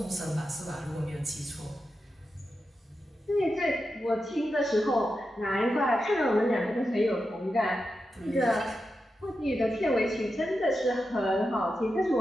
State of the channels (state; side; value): normal; both; correlation 0.89